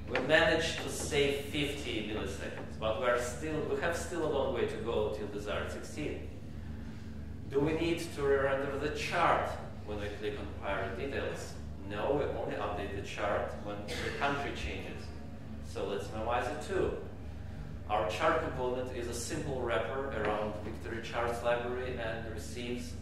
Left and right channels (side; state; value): both; identical; correlation 1.00